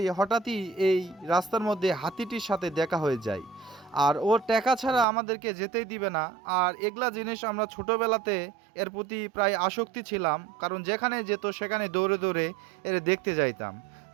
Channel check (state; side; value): drops out; left; at 5.1 s